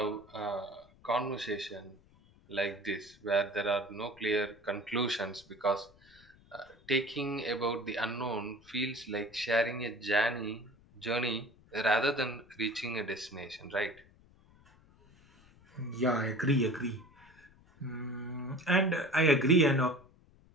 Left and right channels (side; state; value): left; noise; rumble, 27 dB below the sound